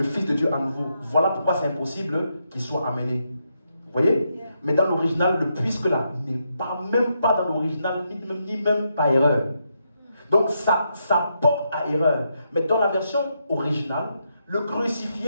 Fils de Dieu à nouveau. Voilà pourquoi c'est impossible qu'il soit amené. Vous voyez? Mais dans l'original, le puisque là n'est pas même pas dans l'original, ni même pas erreur. Donc ça porte à erreur. Mais dans la version originale, le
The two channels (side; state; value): both; inverted; correlation -0.81